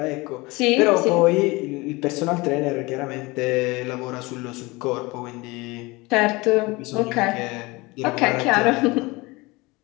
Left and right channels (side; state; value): right; quieter; 23.4 dB